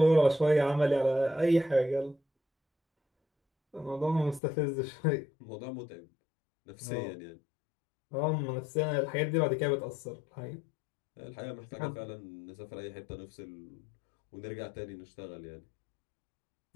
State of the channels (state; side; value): drops out; right; at 4.4 s